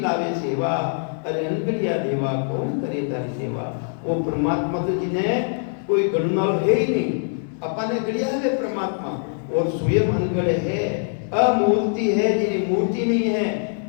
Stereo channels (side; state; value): right; silent; 63 dB below the other